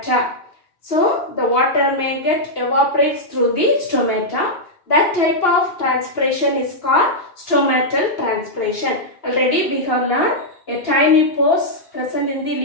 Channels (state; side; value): late; right; 2.9 ms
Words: So the water may get evaporates through the stomata. That type of transpiration is called stomatal transpiration. Already we have learned a tiny pores present in the